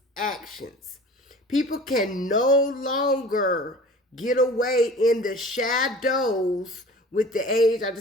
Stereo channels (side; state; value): both; normal; correlation 0.42